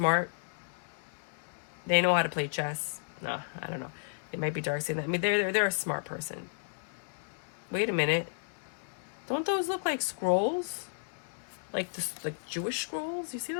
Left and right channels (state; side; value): silent; right; digital silence